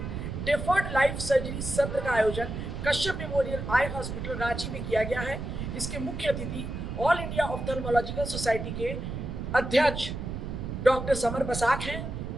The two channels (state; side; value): noise; right; rumble, 5 dB below the sound